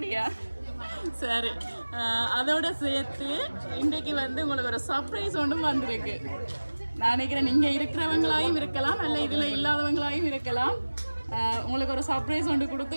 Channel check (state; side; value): inverted; both; correlation -1.00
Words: சரி, அதோட சேர்த்து இன்றைக்கு வந்து உங்களுக்கு ஒரு சர்ப்ரைஸ் ஒன்றும் வந்திருக்கு. நான் நினைக்கிறேன் நீங்கள் இருக்கிறவங்களாயும் இருக்கலாம், இல்லை இதில் இல்லாதவங்களாயும் இருக்கலாம். உங்களுக்கு ஒரு சர்ப்ரைஸ் ஒன்று